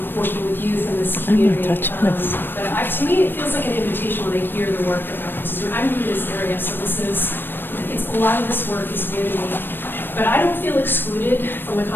working with youth in this community. But to me, it feels like an invitation when I hear the work that Marcus is doing. I'm new to this area, so a lot of this work is new to me. But I don't feel excluded from the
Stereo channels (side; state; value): right; late; 0.096 ms